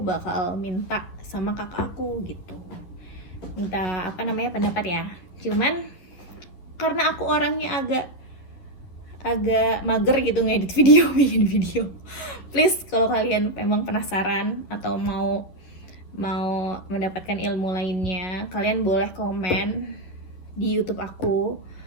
minta sama kakak aku gitu, minta pendapat ya. Cuman karena aku orangnya agak mager gitu ngedit video, bikin video. Please kalau kalian memang penasaran atau mau mendapatkan ilmu lainnya, kalian boleh komen di YouTube aku,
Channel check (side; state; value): right; late; 11 ms